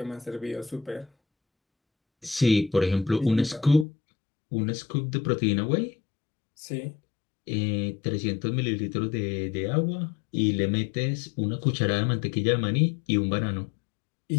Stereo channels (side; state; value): right; drops out; at 3.9 s